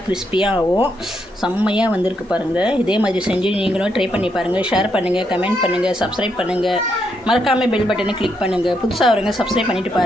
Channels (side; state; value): both; normal; correlation 0.78